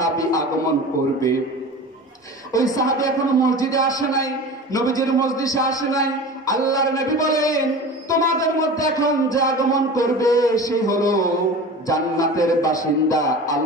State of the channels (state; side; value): normal; both; correlation 0.34